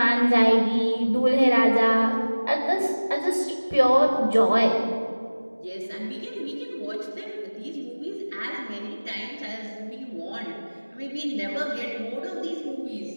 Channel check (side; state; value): both; inverted; correlation -1.00